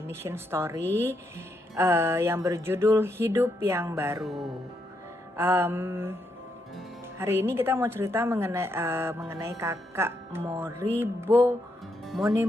Mission Story yang berjudul Hidup yang Baru. Hari ini kita mau cerita mengenai kakak Moribo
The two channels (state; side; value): normal; both; correlation 0.79